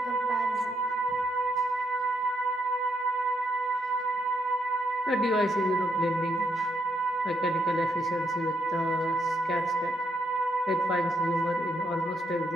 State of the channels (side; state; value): both; normal; correlation 0.77